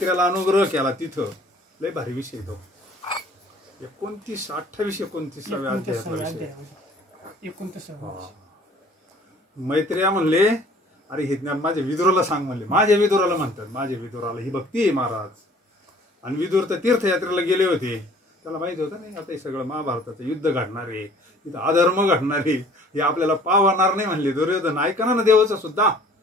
अनुग्रह केला तिथं. लय भारी विषय तो. 29-28 अध्यायातला विषय. मैत्र्या म्हणले, अरे हे ज्ञान माझ्या विदुराला सांग म्हणले. माझ्या विदुराला म्हणतात, माझ्या विदुराला ही भक्ती आहे महाराज. आणि विदुर तर तीर्थयात्रेला गेले होते, त्याला माहित होतं नाही आता हे सगळं महाभारताचं युद्ध घडणार आहे, तिथं अधर्म घडणार आहे, हे आपल्याला पावणार नाही म्हणले. दुर्योधन ऐकना ना देवाचं सुद्धा.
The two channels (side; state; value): both; normal; correlation 0.53